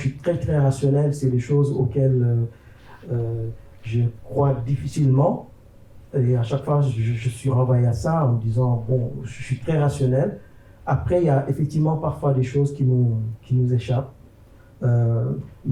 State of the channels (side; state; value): both; identical; correlation 1.00